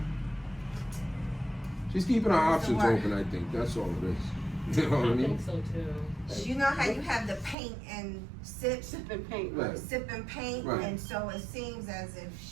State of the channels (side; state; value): left; drops out; at 7.6 s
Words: She's keeping her options open, I think, that's all it is. You know what I mean? so too. you know how you have the paint and sip and paint, Right. sip and paint, Right. and so it seems as